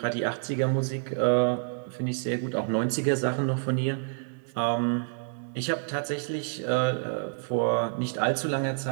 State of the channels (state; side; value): silent; left; digital silence